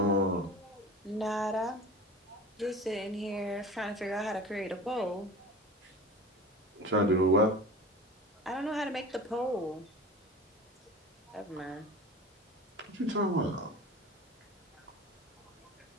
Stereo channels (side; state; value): both; normal; correlation 0.37